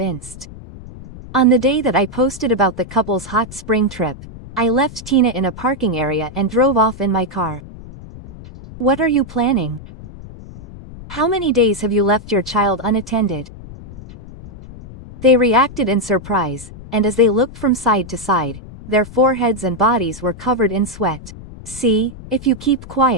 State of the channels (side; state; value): left; noise; rumble, 15 dB below the sound